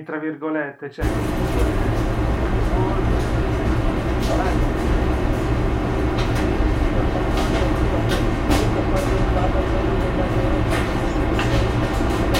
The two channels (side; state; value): both; identical; correlation 1.00